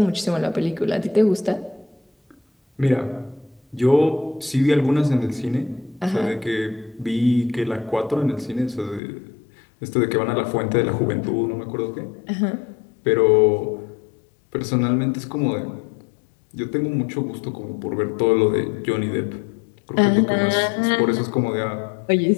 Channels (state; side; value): drops out; right; at 9.0 s